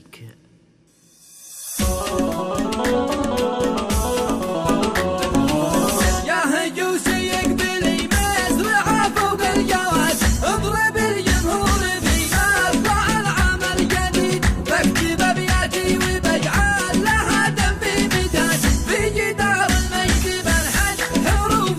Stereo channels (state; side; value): identical; both; correlation 1.00